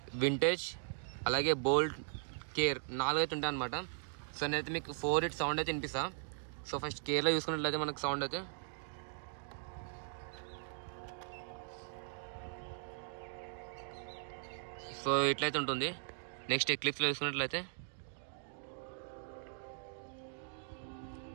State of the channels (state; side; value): silent; left; digital silence